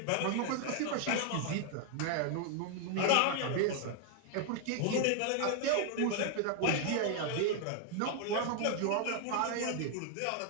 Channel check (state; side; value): different; both; correlation 0.00